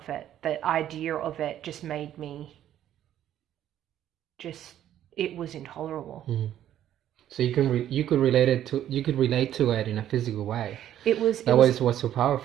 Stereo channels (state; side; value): quieter; left; 11.4 dB